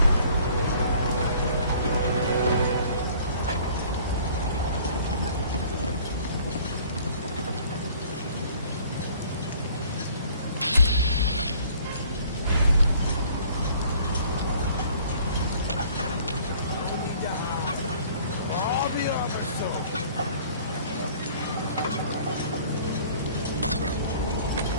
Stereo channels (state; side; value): inverted; both; correlation -0.53